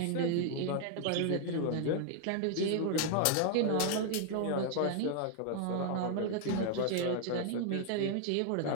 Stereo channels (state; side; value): different; both; correlation 0.00